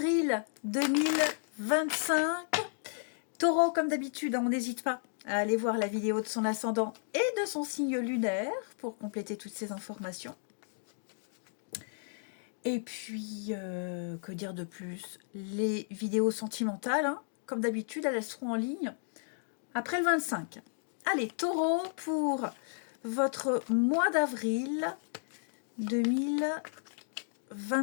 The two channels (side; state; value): right; silent; digital silence